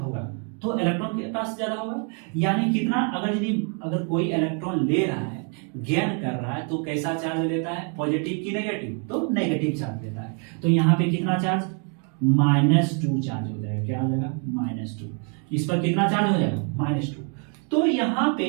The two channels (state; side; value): quieter; left; 39.6 dB